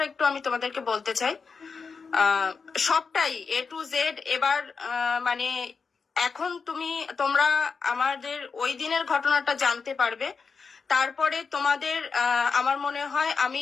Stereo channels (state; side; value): quieter; right; 5.1 dB